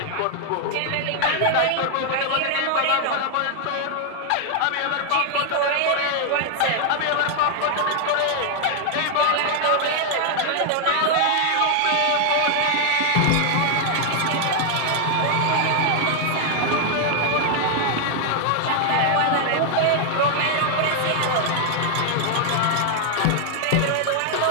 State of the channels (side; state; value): both; different; correlation 0.00